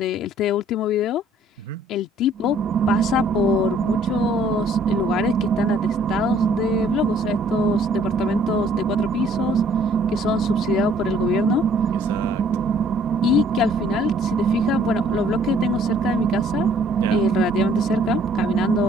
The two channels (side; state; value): both; normal; correlation 0.59